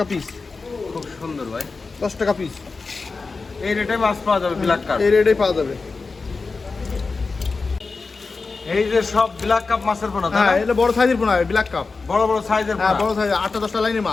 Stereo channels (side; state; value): right; quieter; 4.2 dB